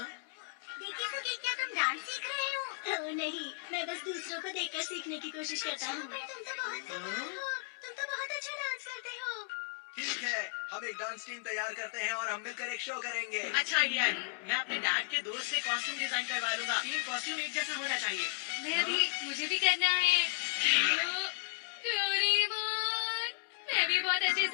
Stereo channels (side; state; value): right; silent; 55 dB below the other